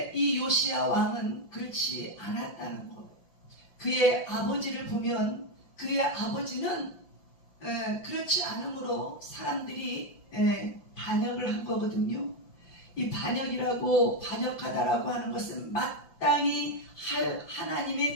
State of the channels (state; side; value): late; right; 5.4 ms